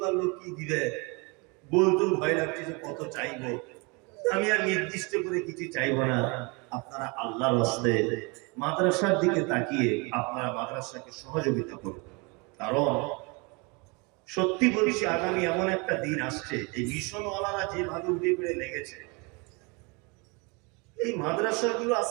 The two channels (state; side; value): quieter; left; 29.6 dB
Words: লোক কি দিবে বলতেও ভয় লাগছে যে কত চাইবো। আমি আর নির্দিষ্ট করে কিছু চাইবো না। আপনারা আল্লাহর রাস্তায় মাদ্রাসার দিকে তাকিয়ে আপনারা মাদ্রাসাকে সহযোগিতা করুন, কারণ সত্যি বলছি আগামী এমন একটা দিন আসছে, এই মিশনওয়ালারা যেভাবে উঠে পড়ে লেগেছে, এই মাদ্রাসাগুলো